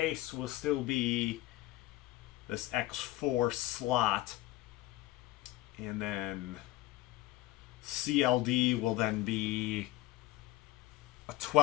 will still be this X4 slot. And then CLD will then be a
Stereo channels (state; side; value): quieter; right; 17.2 dB